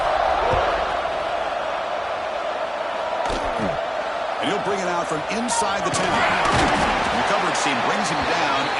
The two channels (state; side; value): identical; both; correlation 1.00